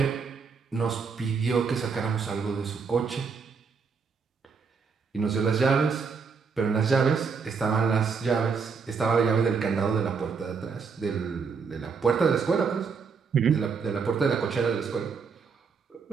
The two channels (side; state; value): left; quieter; 5.5 dB